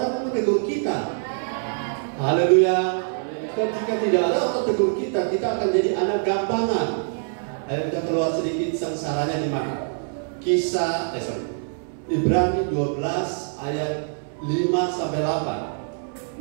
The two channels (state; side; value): silent; left; 60 dB below the other